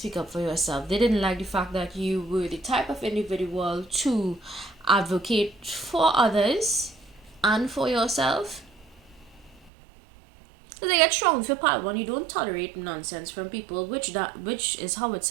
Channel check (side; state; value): left; drops out; at 9.7 s